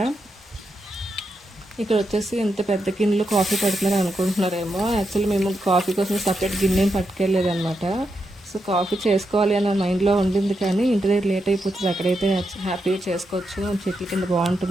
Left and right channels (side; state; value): both; normal; correlation 0.85